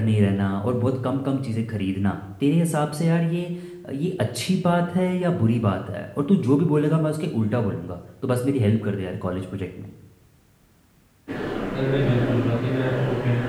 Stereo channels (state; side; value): identical; both; correlation 1.00